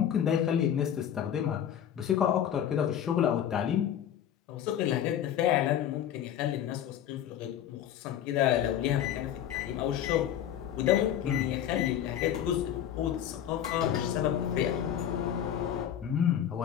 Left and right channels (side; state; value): right; quieter; 10.1 dB